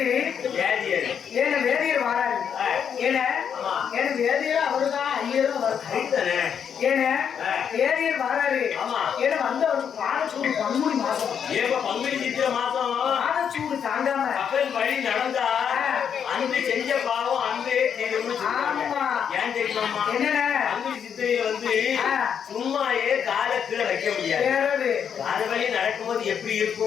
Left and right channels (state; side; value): quieter; right; 7.8 dB